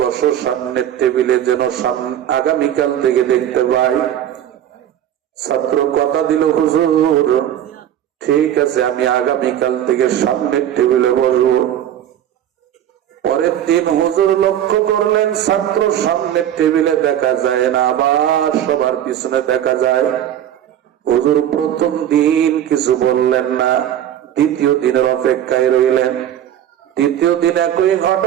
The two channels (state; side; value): quieter; left; 10.9 dB